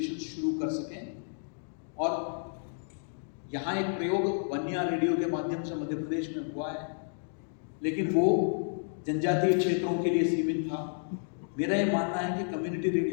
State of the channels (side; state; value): right; silent; digital silence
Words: शुरू कर सकें। और यहाँ एक प्रयोग वन्या रेडियो के माध्यम से मध्य प्रदेश में हुआ है, लेकिन वो जनजातीय क्षेत्रों के लिए सीमित था। मेरा ये मानना है कि कम्युनिटी